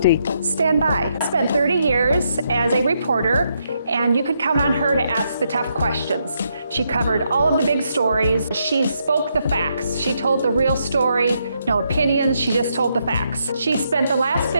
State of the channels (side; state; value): both; inverted; correlation -0.78